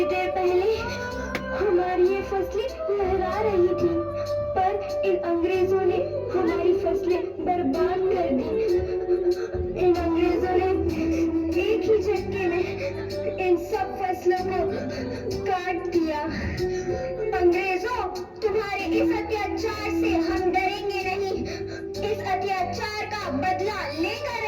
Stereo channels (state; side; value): identical; both; correlation 1.00